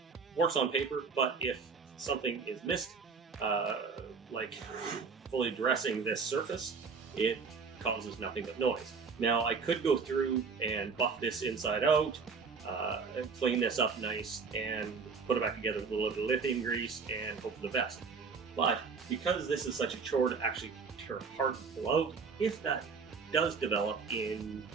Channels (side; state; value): left; quieter; 5.2 dB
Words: works on paper, but if something is missed, like fully dressing this surface, it causes nothing but noise. Now I could go through and buff this inside out, clean this up nice, and put it back together with a little bit of lithium grease and hope for the best. But because this is such a chore to actually tear apart and pull out, if that does develop in